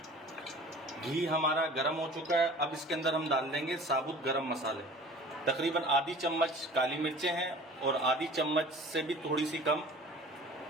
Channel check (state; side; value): normal; both; correlation 0.44